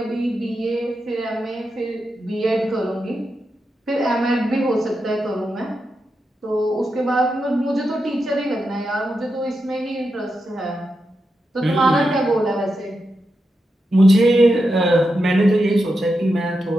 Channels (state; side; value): normal; both; correlation 0.87